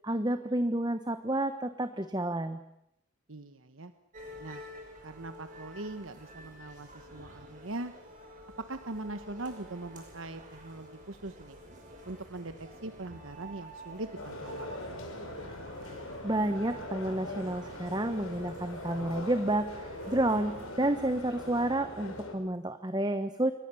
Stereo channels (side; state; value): both; normal; correlation 0.61